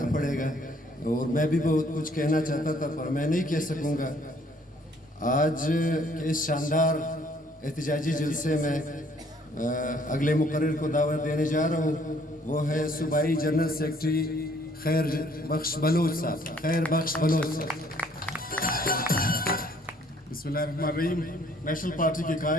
پڑے گا, اور میں بھی بہت کچھ کہنا چاہتا تھا پر میں نہیں کہہ سکوں گا. آج کے اس شاندار احتجاجی جلسے میں اگلے مقرر کو دعوت دینے جا رہا ہوں, وہ ہے صوبائی جنرل سیکرٹری خیر بخش بلوچ صاحب. خیر بخش بلوچ صاحب. بسم اللہ الرحمن الرحیم. نیشنل پارٹی کے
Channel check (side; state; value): both; normal; correlation 0.62